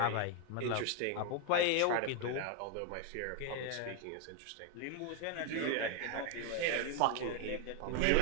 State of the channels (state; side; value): different; both; correlation 0.01